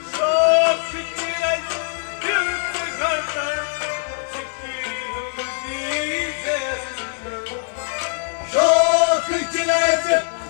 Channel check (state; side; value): silent; right; 63 dB below the other